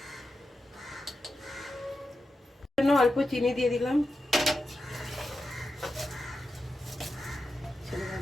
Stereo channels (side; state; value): both; normal; correlation 0.90